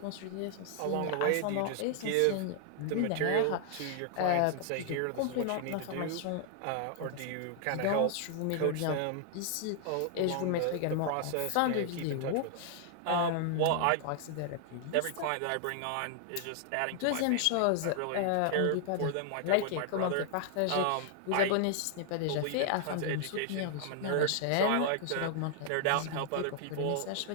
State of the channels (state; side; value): different; both; correlation 0.00